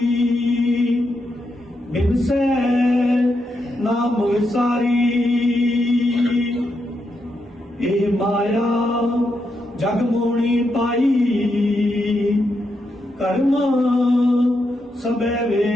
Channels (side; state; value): both; normal; correlation 0.83